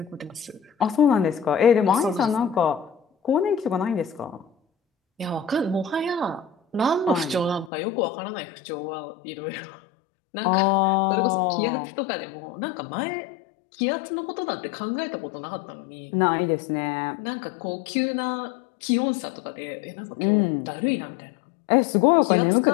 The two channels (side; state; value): right; drops out; at 7.7 s